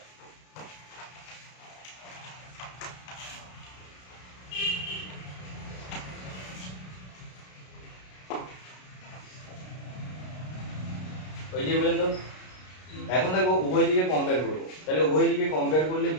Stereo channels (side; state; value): right; late; 33 ms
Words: ওই যে বললেন তো, এখন দেখো উভয় দিকে কম্পেয়ার করব। তাহলে উভয় দিকে কম্পেয়ার করলে